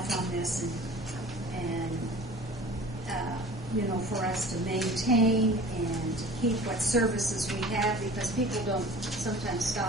on this, and for us to maintain and to keep what services we have, because people don't sometimes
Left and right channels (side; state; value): both; normal; correlation 0.43